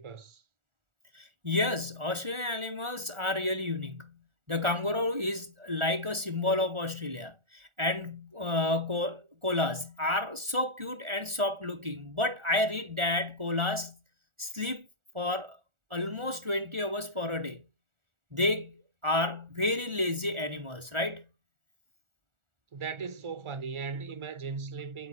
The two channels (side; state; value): left; late; 1.4 ms